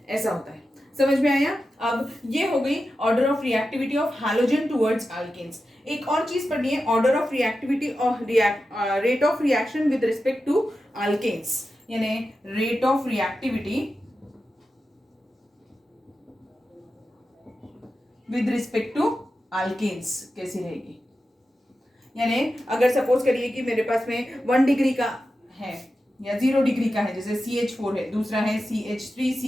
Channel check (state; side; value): normal; both; correlation 0.91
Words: ऐसा होता है। समझ में आया? अब ये हो गई order of reactivity of halogen towards alkanes. एक और चीज पढ़नी है, order of reactivity of rate of reaction with respect to alkanes, यानी rate of reactivity with respect to alkanes कैसी रहेगी। यानी अगर सपोज करिए कि मेरे पास में 1 डिग्री का है या 0 डिग्री का है, जैसे CH4 है, दूसरा है